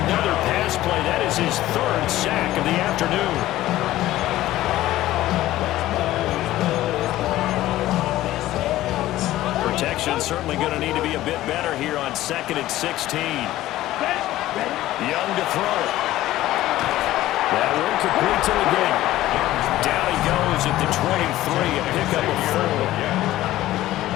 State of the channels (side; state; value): right; quieter; 15.2 dB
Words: pass play. That is his third sack of the afternoon. Protection certainly going to need to be a bit better here on 2nd and 16. Young to throw it. That one complete to the game. Down he goes at the 23, a pickup of 4.